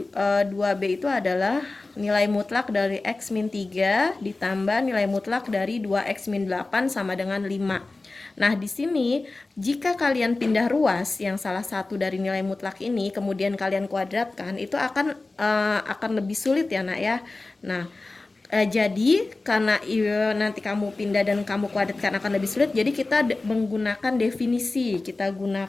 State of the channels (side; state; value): right; quieter; 3.3 dB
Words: 2B itu adalah nilai mutlak dari X min 3 ditambah nilai mutlak dari 2X min 8 sama dengan 5. Nah, di sini jika kalian pindah ruas yang salah satu dari nilai mutlak ini kemudian kalian kuadratkan, itu akan lebih sulit ya, Nak ya. Nah, jadi karena nanti kamu pindah dan kamu kuadratkan akan lebih sulit, jadi kita menggunakan definisi. Kita